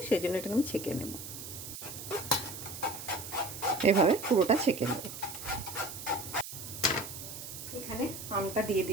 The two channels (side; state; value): right; noise; hiss, 10 dB below the sound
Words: সেই জন্য এটাকে আমি ছেঁকে নেব। এভাবে পুরোটা ছেঁকে নেব। এখানে আমটা দিয়ে